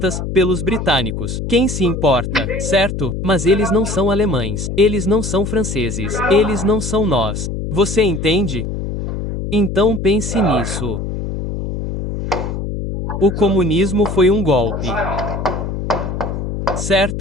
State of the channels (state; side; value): noise; left; hum, 4 dB below the sound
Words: pelos britânicos. Quem se importa, certo? Mas eles não são alemães. Eles não são franceses. Eles não são nós. Você entende? Então pense nisso. O comunismo foi um golpe.